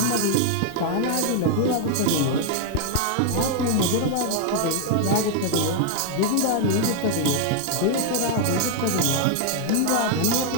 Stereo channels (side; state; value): both; different; correlation 0.01